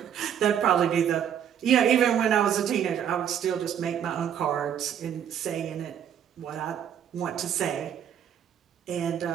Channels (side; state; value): left; quieter; 9.1 dB